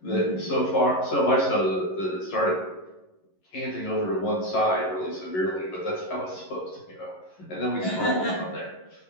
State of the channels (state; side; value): late; right; 11 ms